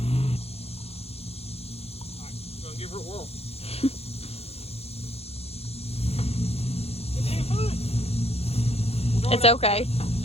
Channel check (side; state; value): right; late; 0.29 ms